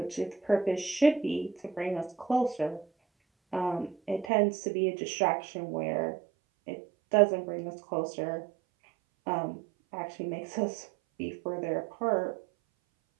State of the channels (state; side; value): drops out; left; at 4.3 s